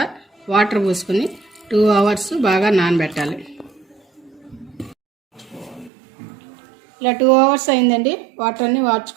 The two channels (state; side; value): drops out; left; at 5.9 s